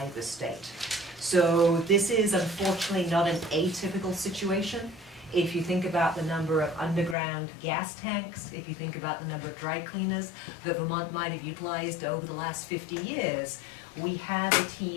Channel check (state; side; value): drops out; right; at 7.2 s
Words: the state. So this is unfortunately not an atypical situation. If you think about the number of underground gas tanks, if you think about the number of dry cleaners that Vermont might have utilized over the last 50 years, we have a